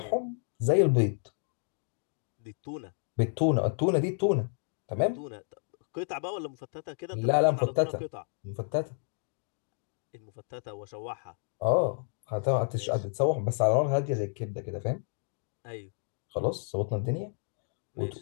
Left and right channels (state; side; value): silent; right; 57 dB below the other